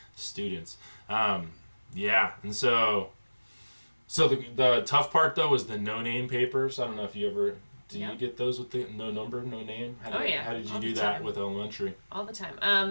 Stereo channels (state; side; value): inverted; both; correlation -1.00